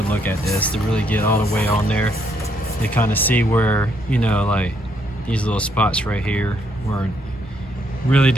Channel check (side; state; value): both; normal; correlation 0.72